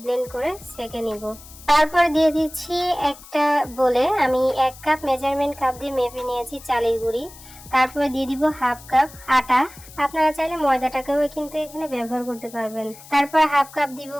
ব্লেন্ড করে সেঁকে নিব। তারপর দিয়ে দিচ্ছি একটা বলে আমি 1 কাপ মেজারমেন্ট কাপ দিয়ে মেপে নিয়েছি চালের গুঁড়ি। তারপরে দিয়ে দিব হাফ কাপ আটা, আপনারা চাইলে ময়দাটাকেও কিন্তু এখানে ব্যবহার করতে পারবেন। তারপর হাফ কাপ দিব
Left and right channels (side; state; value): left; noise; hiss, 19 dB below the sound